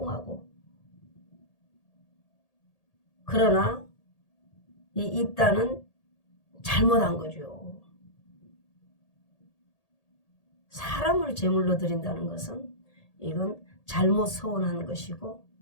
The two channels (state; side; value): late; right; 1.8 ms